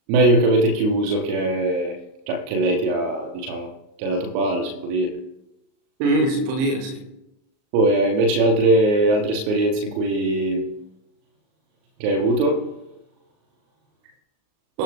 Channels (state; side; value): late; left; 38 ms